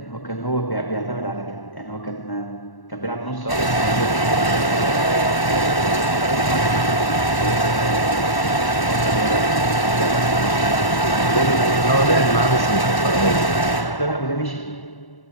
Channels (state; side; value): late; right; 1.1 ms